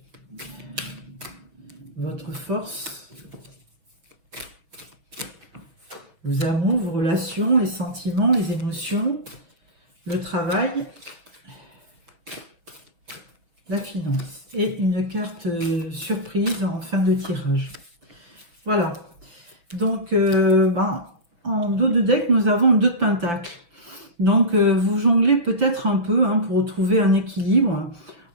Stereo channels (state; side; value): late; left; 6.4 ms